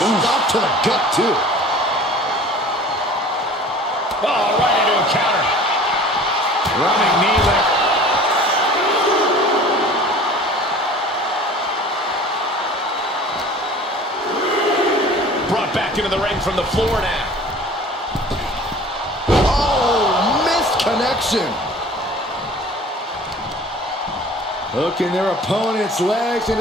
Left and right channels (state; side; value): normal; both; correlation 0.45